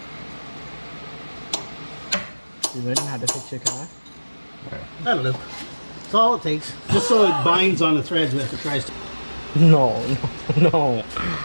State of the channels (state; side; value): inverted; both; correlation -1.00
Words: You learning how to fix your car? I don't know. That's all it takes. Just so it binds on the threads if it tries to. No.